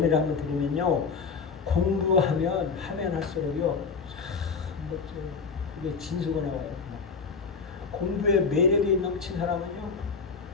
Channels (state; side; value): quieter; right; 5.1 dB